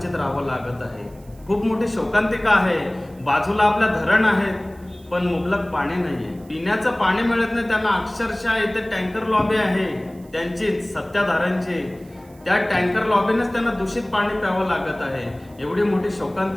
राहावं लागत आहे। खूप मोठी शोकांतिका आहे, बाजूला आपल्या धरण आहेत पण मुबलक पाणी नाही आहे, पिण्याचं पाणी मिळत नाही त्यांना। अक्षरशः इथे टँकर लॉबी आहे त्यांचीच, सत्ताधाऱ्यांची, त्या टँकर लॉबीनेच त्यांना दूषित पाणी प्यावं लागत आहे। एवढी मोठी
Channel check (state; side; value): noise; right; hiss, 29 dB below the sound